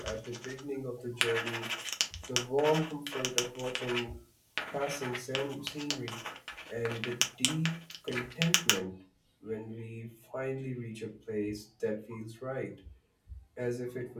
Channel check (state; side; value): identical; both; correlation 1.00